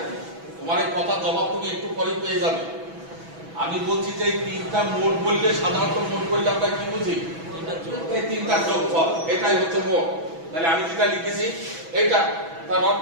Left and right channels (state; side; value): late; left; 6.1 ms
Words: তোমার এই কথার জবাব তুমি একটু পরে পেয়ে যাবে। আমি বলছি যে এই তিনটা মোট বললে, সাধারণত মোট বললে আমরা কি বুঝি? এই তিনটার যোগফল, এটাই হচ্ছে মোট। তাহলে আমি যেটা লিখেছি এইটা তার